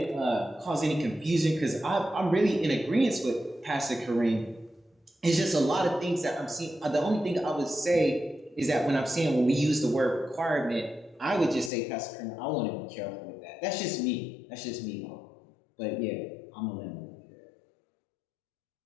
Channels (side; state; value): right; drops out; at 11.7 s